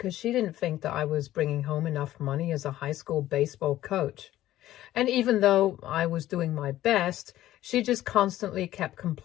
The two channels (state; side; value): quieter; right; 14.1 dB